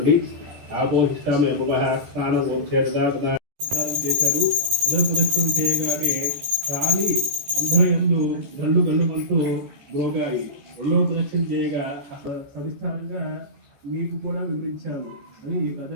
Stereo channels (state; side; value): late; left; 14 ms